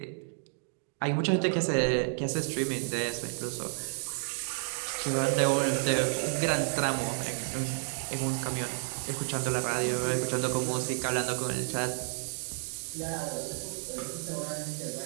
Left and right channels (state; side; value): silent; left; digital silence